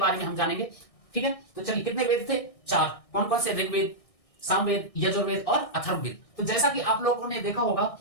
में हम जानेंगे, ठीक है। तो चलिए, कितने वेद थे? 4। कौन कौन से? ऋग्वेद, सामवेद, यजुर्वेद और अथर्ववेद। तो जैसा कि आप लोगों ने देखा होगा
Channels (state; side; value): late; right; 1.6 ms